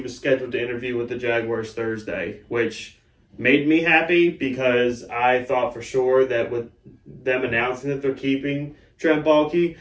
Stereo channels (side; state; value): both; identical; correlation 1.00